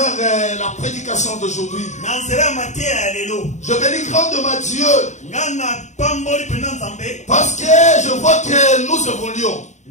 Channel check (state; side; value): late; right; 0.34 ms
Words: la prédication d'aujourd'hui, je bénis grandement Dieu parce que je vois que nous évoluons.